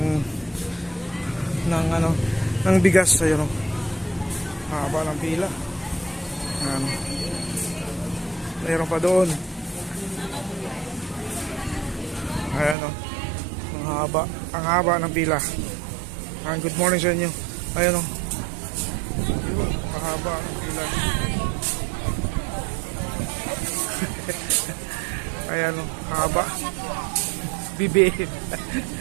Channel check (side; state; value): left; drops out; at 12.8 s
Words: ng bigas. Ayun, mahaba ng pila. Mayroon pa doon. Ayan, ang haba ng pila. Good morning sa inyo. Ayan, mahaba ng pila. Ayan, haba. Bibi.